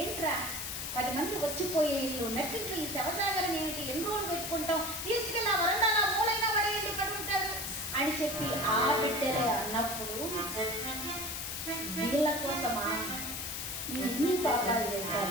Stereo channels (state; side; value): noise; left; hiss, 4 dB below the sound